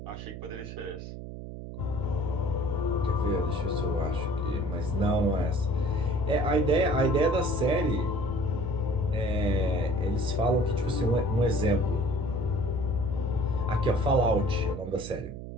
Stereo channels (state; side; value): noise; right; hum, 10 dB below the sound